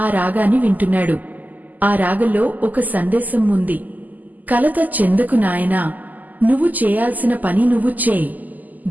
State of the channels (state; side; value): late; left; 0.082 ms